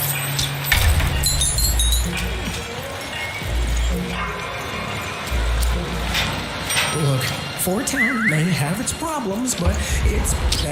Look, Fort Town may have its problems, but it's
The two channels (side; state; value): both; identical; correlation 1.00